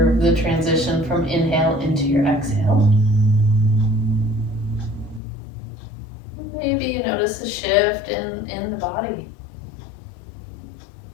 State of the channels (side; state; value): right; drops out; at 5.2 s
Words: the transition from inhale into your exhale. Maybe you notice a shift in the body.